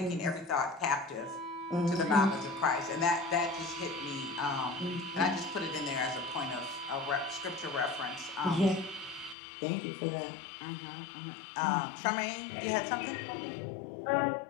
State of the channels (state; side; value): drops out; right; at 9.3 s